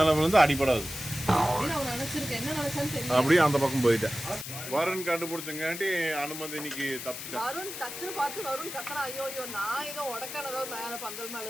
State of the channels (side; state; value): left; noise; hiss, 8 dB below the sound